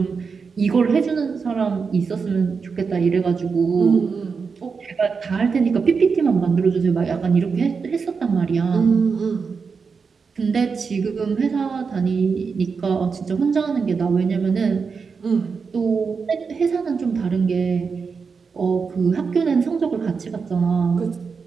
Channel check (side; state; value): left; quieter; 5.3 dB